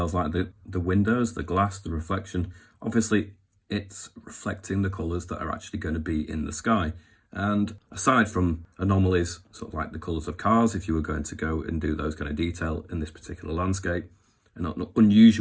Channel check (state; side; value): identical; both; correlation 1.00